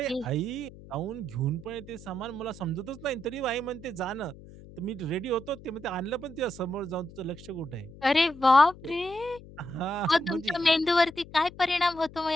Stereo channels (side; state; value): left; noise; hum, 18 dB below the sound